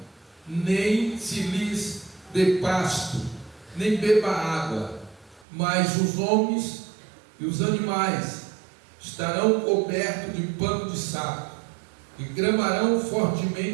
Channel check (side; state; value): left; drops out; at 5.5 s